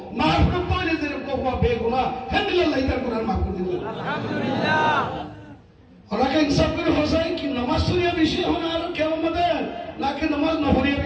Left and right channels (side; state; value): both; identical; correlation 1.00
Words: মাফরুত করে যে কোবা বেগুনাহ আলহামদুলিল্লাহ হিতার গুনাহ মাফ করে দিল আলহামদুলিল্লাহ ওরাকে ইনসাফ করে হোসাই কি নামাজ সুরিয়া বেশি হনা আর কেমন মধ্যে নাকি নামাজ নহরিয়া